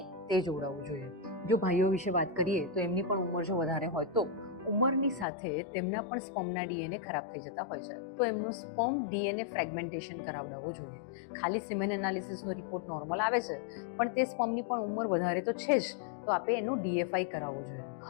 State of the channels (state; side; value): drops out; right; at 5.2 s